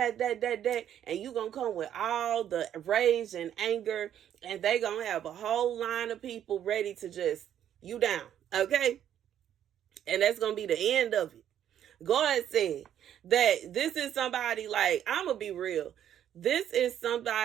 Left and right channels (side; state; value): left; quieter; 10.3 dB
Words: and you gonna come with all the rage and anger, and they gonna have a whole line of people ready to just you down, okay? And that's gonna be the end of it. God said that this is somebody, like, I'm gonna be real. This is